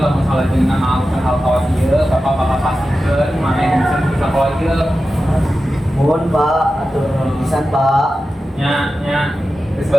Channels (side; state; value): both; normal; correlation 0.92